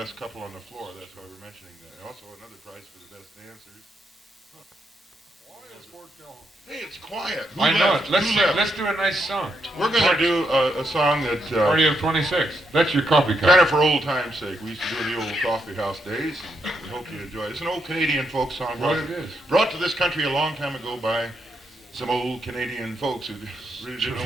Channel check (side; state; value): both; normal; correlation 0.79